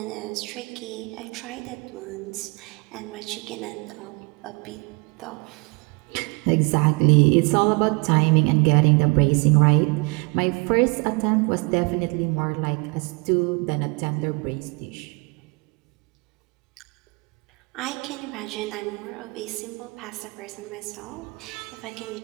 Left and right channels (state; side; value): quieter; left; 30.3 dB